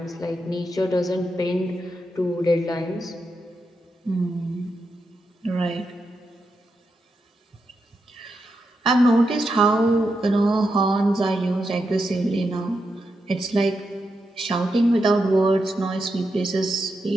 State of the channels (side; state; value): both; normal; correlation 0.85